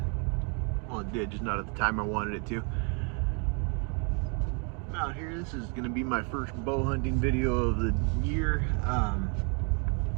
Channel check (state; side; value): quieter; left; 36.8 dB